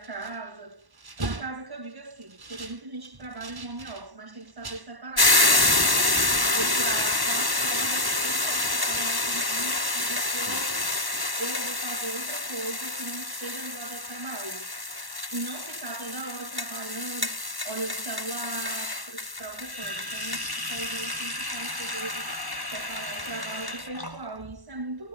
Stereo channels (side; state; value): left; late; 1.1 ms